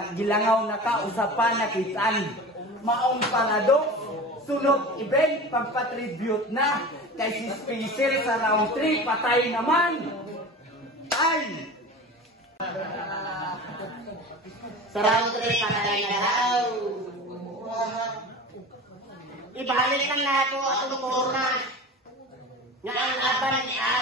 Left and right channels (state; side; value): normal; both; correlation 0.34